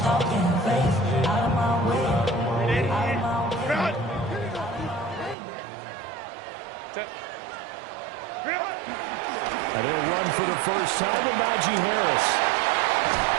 And he'll run for the first time with Najee Harris.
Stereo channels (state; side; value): drops out; left; at 5.4 s